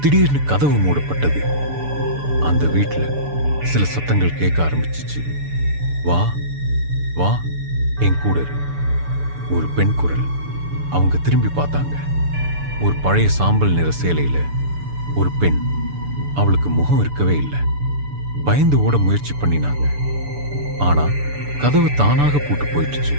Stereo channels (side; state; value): left; late; 6.9 ms